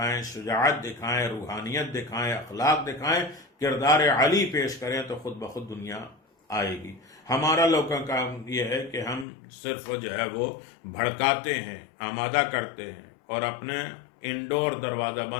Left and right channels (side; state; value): right; drops out; at 9.2 s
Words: شجاعت دکھائیں، روحانیت دکھائیں، اخلاق دکھائیں، کردار علی پیش کریں، تو خود بخود دنیا آئے گی. ہمارا لوگوں کا کام یہ ہے کہ ہم صرف جو ہے وہ بھڑکاتے ہیں، آمادہ کرتے ہیں، اور اپنے انڈور دروازہ